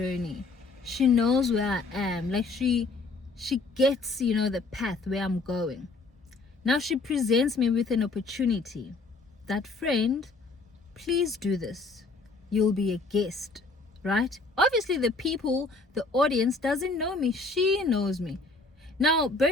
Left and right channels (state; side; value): quieter; right; 3.6 dB